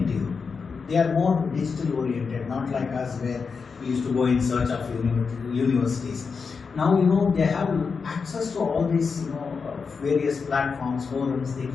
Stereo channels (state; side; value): quieter; right; 5.3 dB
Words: They are more digital oriented, not like us where we used to go in search of universities. Now they have access to all these various platforms, forums. They